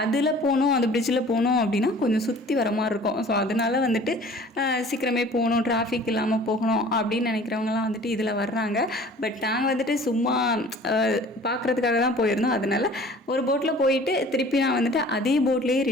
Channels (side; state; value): both; normal; correlation 0.47